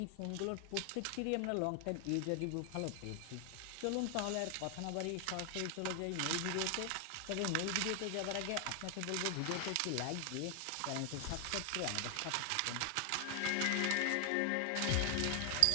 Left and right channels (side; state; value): both; different; correlation 0.00